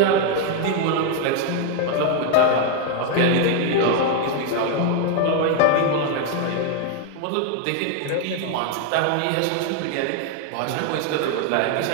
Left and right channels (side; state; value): both; different; correlation 0.00